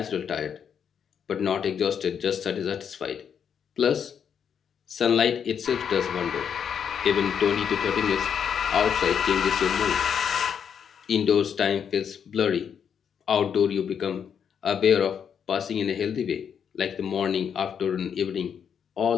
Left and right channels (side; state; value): right; quieter; 7.7 dB